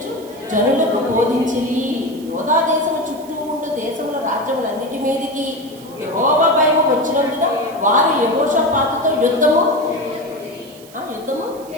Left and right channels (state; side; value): noise; right; hiss, 22 dB below the sound